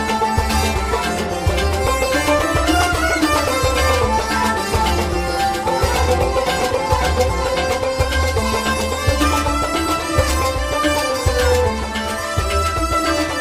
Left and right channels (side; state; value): both; identical; correlation 1.00